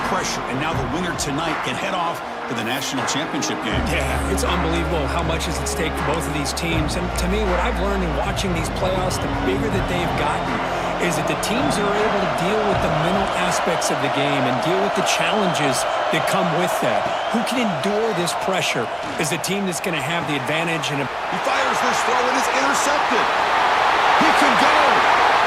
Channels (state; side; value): identical; both; correlation 1.00